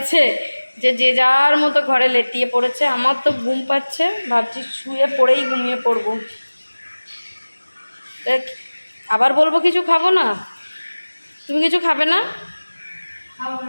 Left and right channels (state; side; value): inverted; both; correlation -1.00